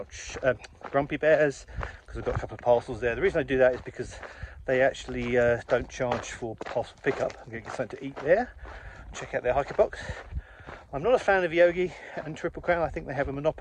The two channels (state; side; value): identical; both; correlation 1.00